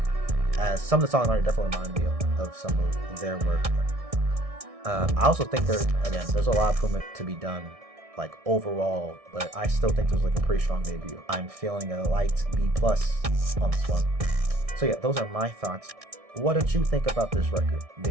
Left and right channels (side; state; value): left; late; 1.6 ms